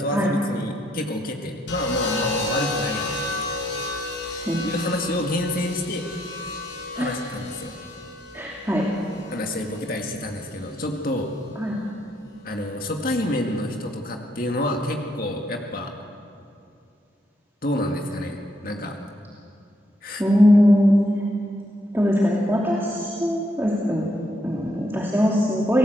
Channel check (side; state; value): both; normal; correlation 0.73